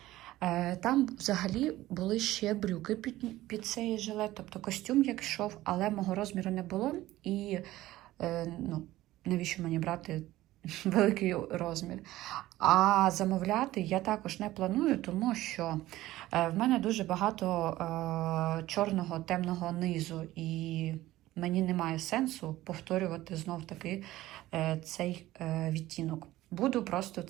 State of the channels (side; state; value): left; quieter; 16.1 dB